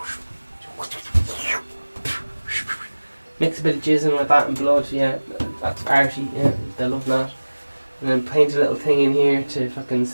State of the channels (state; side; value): inverted; both; correlation -1.00